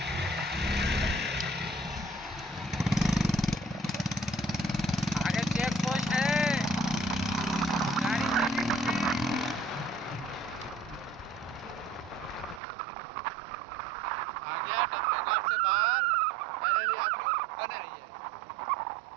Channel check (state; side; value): drops out; left; at 12.6 s